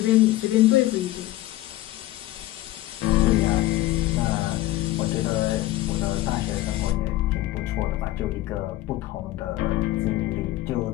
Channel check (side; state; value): right; quieter; 16.3 dB